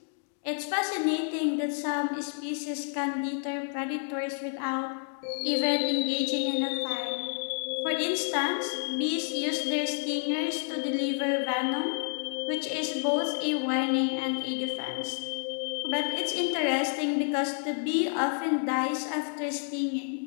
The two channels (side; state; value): right; silent; 58 dB below the other